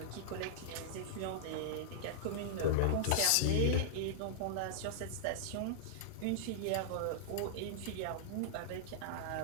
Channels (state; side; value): different; both; correlation -0.01